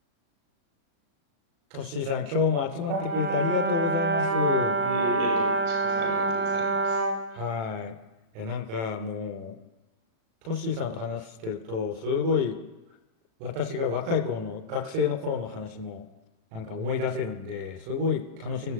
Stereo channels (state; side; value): late; left; 36 ms